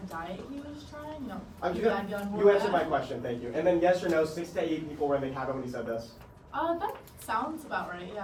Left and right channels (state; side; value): identical; both; correlation 1.00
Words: diet he was trying. You know, bad gun, You answered my question, thank you. And then yes or no, 6 to 8 people were in the cabin when he said this. That sounds about right.